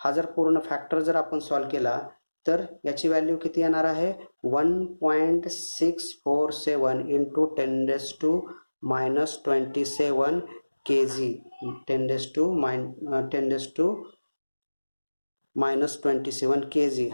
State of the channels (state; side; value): inverted; both; correlation -1.00